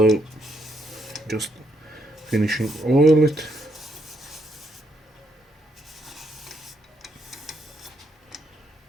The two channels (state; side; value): normal; both; correlation 0.76